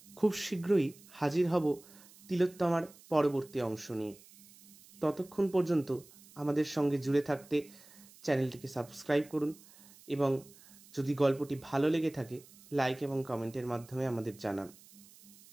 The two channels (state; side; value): noise; right; hiss, 23 dB below the sound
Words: খুব শীঘ্রই হাজির হব তিলোত্তমার পরবর্তী অংশ নিয়ে। ততক্ষণ পর্যন্ত আমাদের সঙ্গে জুড়ে থাকতে চ্যানেলটিকে সাবস্ক্রাইব করুন, এবং যদি গল্পটি ভালো লেগে থাকে লাইক এবং কমেন্টের মাধ্যমে আমাদের জানান।